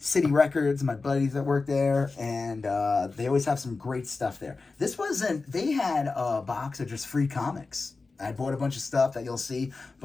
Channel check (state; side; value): quieter; right; 3.9 dB